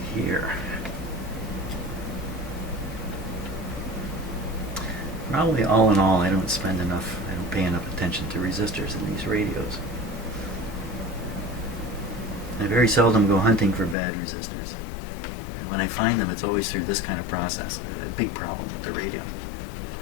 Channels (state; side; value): drops out; right; at 14.0 s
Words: Here. Probably all in all, I don't pay enough attention to resistors in these radios. I very seldom go hunting for bad resistors. And when I find them, it's always through this kind of process, a big problem with the radio